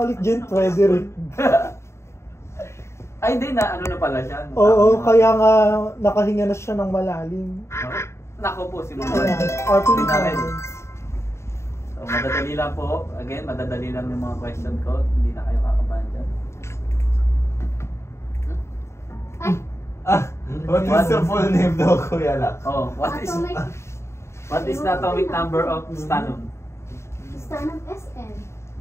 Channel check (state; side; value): late; right; 0.13 ms